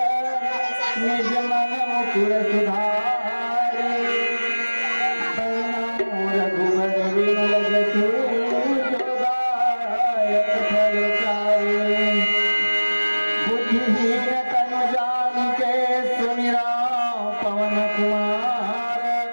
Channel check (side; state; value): both; inverted; correlation -1.00